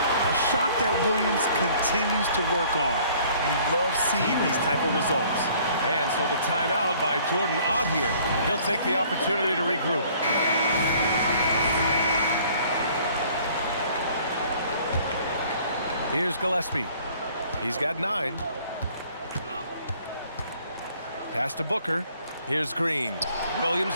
A shot that Williams continues to work on. You love seeing these type of results. And so the timeout by Jordan Ott here. He'll take the opportunity to regroup. Here's Gillespie. He's got 9. Pass to Booker. Here's Green.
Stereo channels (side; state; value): both; inverted; correlation -0.56